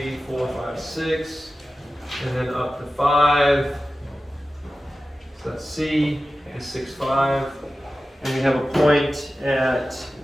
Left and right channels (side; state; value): both; normal; correlation 0.94